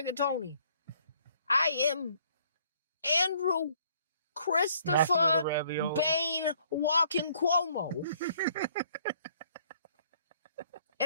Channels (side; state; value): both; inverted; correlation -0.62